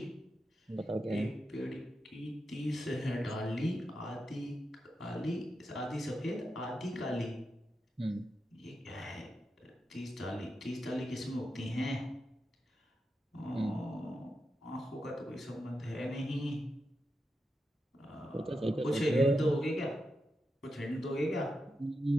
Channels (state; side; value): normal; both; correlation 0.88